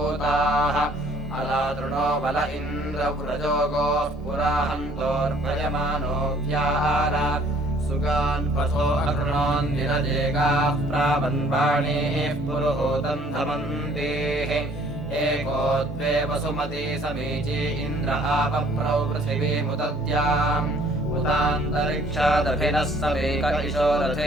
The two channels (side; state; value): both; normal; correlation 0.58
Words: अलातृणो बल इन्द्रव्रजोगोः पुराहन्तोर्भयमानो व्याहार सुगान् पथो अकृणोन्निरजेगाः प्रावन्वाणीः पुरुहूतम् धमन्तेः एको द्वे वसुमती समीची इन्द्र आपप्रौ पृथिवीमुदद्याम् उतान्तरिक्षादभिनः समेक इशो